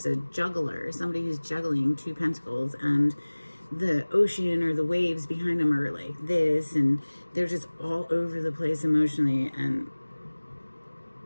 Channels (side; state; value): both; inverted; correlation -1.00